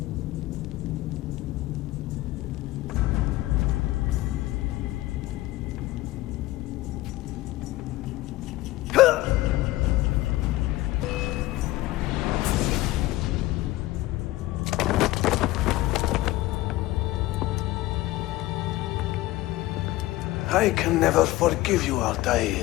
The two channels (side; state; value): right; quieter; 17.5 dB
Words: I can never forgive you,